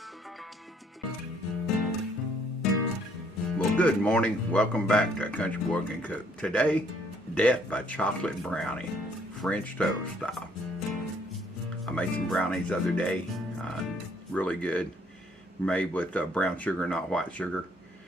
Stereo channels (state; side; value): normal; both; correlation 0.65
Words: Well, good morning. Welcome back to A Country Boy Can Cook. Today, death by chocolate brownie, French toast style. I made some brownies the other day, really good, made with brown sugar, not white sugar.